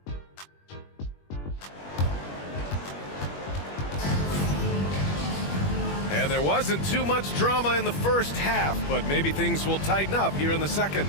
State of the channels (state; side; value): late; right; 21 ms